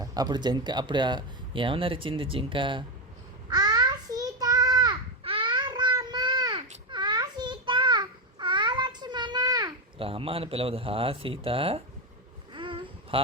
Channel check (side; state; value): both; normal; correlation 0.12